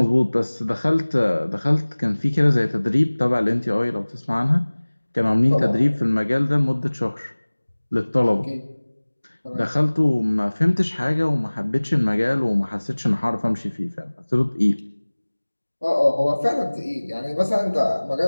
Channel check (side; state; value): both; inverted; correlation -1.00